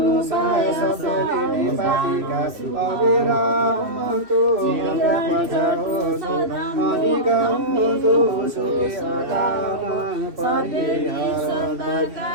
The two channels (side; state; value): left; late; 2.6 ms